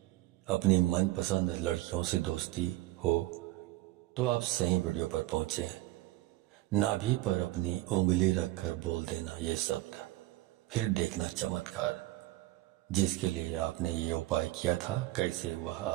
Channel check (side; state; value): left; quieter; 17.8 dB